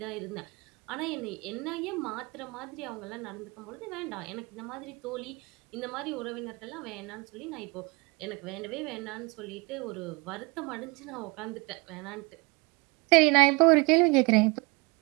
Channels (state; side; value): quieter; left; 27.1 dB